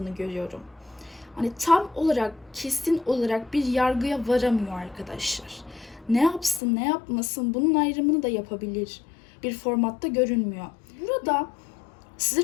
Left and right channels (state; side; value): drops out; right; at 6.6 s